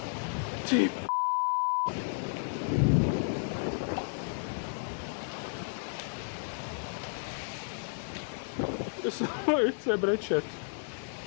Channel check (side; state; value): right; silent; 56 dB below the other